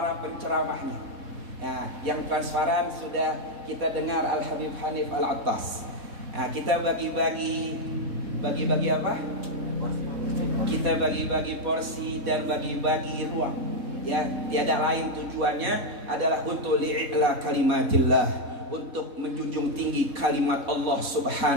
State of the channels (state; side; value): late; left; 4.1 ms